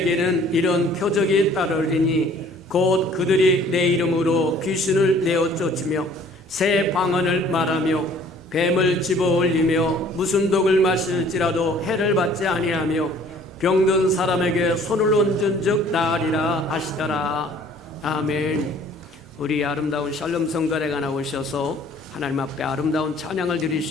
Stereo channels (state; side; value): normal; both; correlation 0.54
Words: 이런 표적이 따르리니 곧 그들이 내 이름으로 귀신을 내어 쫓으며 새 방언을 말하며 뱀을 집어올리며 무슨 독을 마실지라도 해를 받지 아니하며 병든 사람에게 손을 얹은 즉 나으리라 하시더라. 아멘. 우리 아름다운 샬롬 성가래가 나오셔서 하나님 앞에 아름다운 찬양을